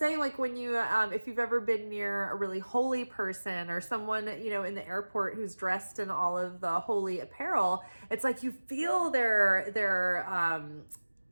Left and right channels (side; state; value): both; inverted; correlation -1.00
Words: like, when you, if you've ever been near a really holy person or someone, in the airport who's dressed in all of the holy apparel, it's like you feel their